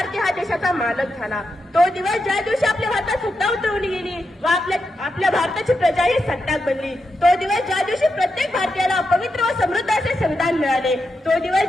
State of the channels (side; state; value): both; normal; correlation 0.86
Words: हा देशाचा मालक झाला. तो दिवस ज्या दिवशी आपल्या भारतात सत्ता उतरवली गेली व आपल्या भारताची प्रजा ही सत्ताक बनली. तो दिवस ज्या दिवशी प्रत्येक भारतीयाला पवित्र व समृद्ध असे संविधान मिळाले. तो दिवस